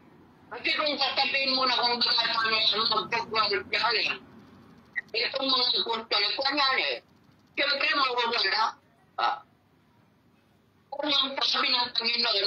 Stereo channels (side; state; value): both; identical; correlation 1.00